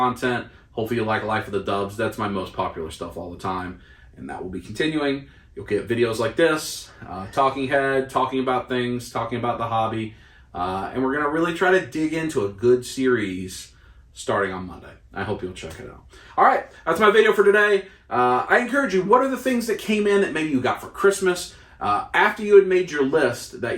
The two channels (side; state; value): both; identical; correlation 1.00